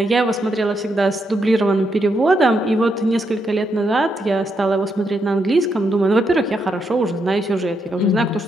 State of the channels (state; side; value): normal; both; correlation 0.80